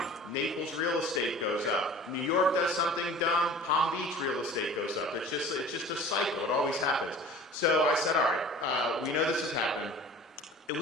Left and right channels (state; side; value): normal; both; correlation 0.43